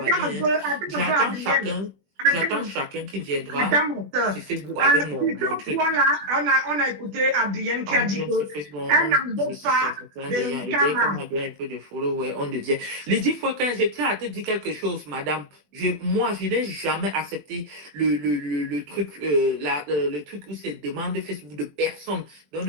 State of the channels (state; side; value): late; left; 20 ms